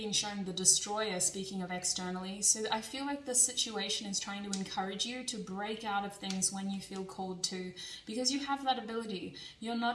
shown the Destroyer, speaking of externally. So I feel like this situation is trying to encourage you to break out of things when you feel called to, because you have that ability. You're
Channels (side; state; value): both; identical; correlation 1.00